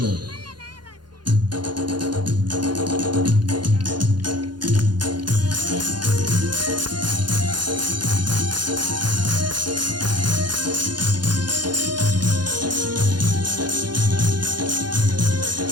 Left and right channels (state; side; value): late; left; 0.71 ms